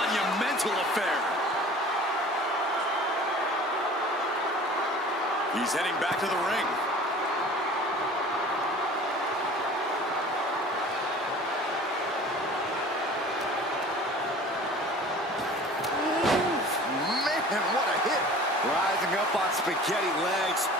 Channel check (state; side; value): normal; both; correlation 0.44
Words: affair. He's heading back to the ring. Man, what a hit. Rising up on spaghetti legs.